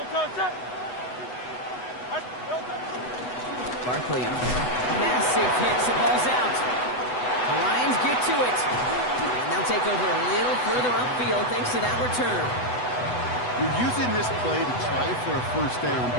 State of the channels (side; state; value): right; late; 8.0 ms